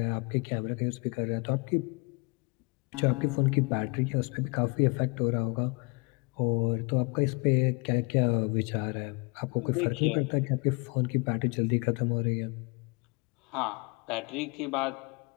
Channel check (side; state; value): right; quieter; 30.5 dB